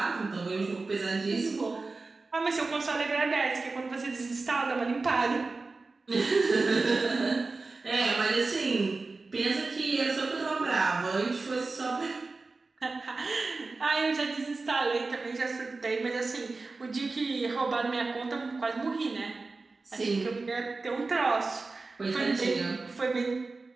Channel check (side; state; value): left; quieter; 3.8 dB